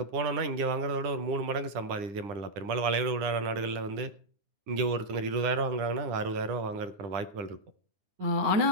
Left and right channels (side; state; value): left; late; 10 ms